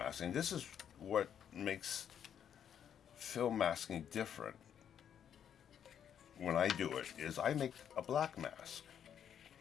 this is what makes film masking different when I do it, is I make a black mask.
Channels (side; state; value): right; quieter; 8.9 dB